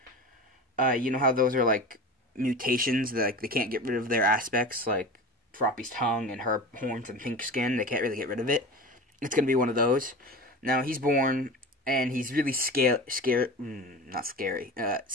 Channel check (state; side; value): normal; both; correlation 0.31